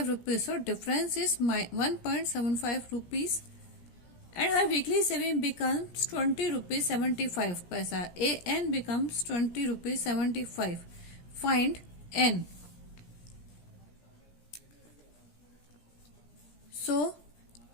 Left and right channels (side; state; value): right; late; 17 ms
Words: rupees. So difference is 1.75 rupees. And her weekly saving becomes 20 rupees 75 paisa. AN becomes 20 rupees 75. Find N. So